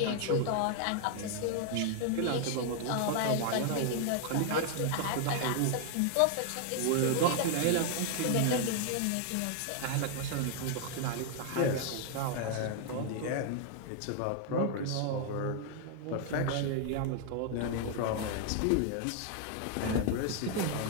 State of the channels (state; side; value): different; both; correlation 0.00